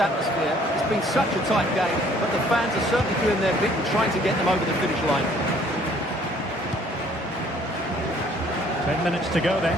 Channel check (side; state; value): both; normal; correlation 0.59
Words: It's been such a tight game, but the fans are certainly doing their bit and trying to get them over the finish line. 10 minutes to go then.